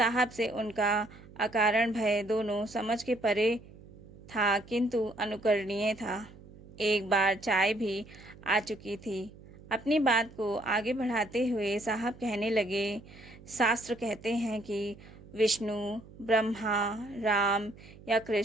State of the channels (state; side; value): noise; right; hum, 20 dB below the sound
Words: से उनका अकारण भय दोनों समझ के परे था, किंतु अनुकरणीय था। एक बार चाय भी आ चुकी थी। अपनी बात को आगे बढ़ाते हुए साहब कहने लगे, शास्त्र कहते हैं कि विष्णु, ब्रह्मा, राम या